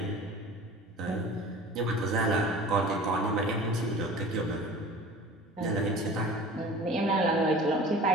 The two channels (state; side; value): normal; both; correlation 0.41